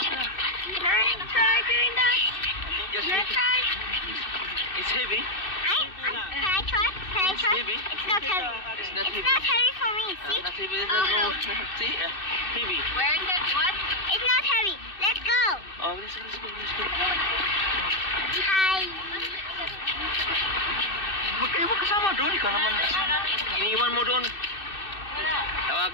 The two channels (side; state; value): right; late; 2.6 ms